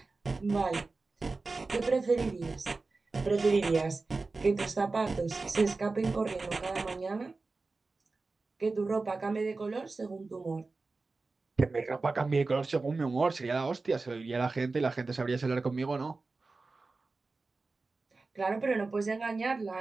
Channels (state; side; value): quieter; left; 3.7 dB